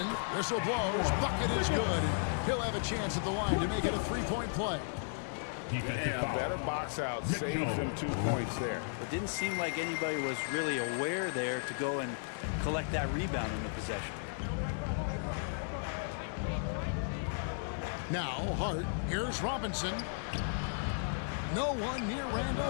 Whistle blows. Bucket is good. He'll have a chance at the line to make it a 3-point play. Yeah, better box out. Saves him 2 points there. It didn't seem like anybody was really aware there to go and collect that rebound in the possession. Now Hart. Here's Robinson. No one near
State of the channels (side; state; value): right; silent; 55 dB below the other